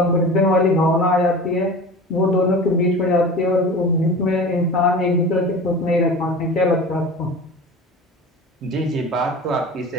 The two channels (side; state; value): both; normal; correlation 0.35